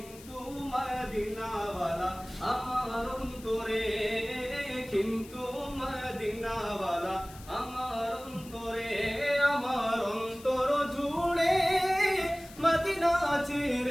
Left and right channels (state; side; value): noise; left; hiss, 19 dB below the sound